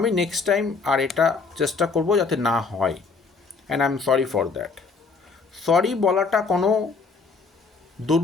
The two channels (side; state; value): right; quieter; 4.6 dB